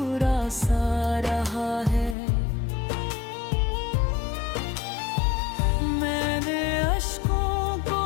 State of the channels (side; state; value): right; drops out; at 2.1 s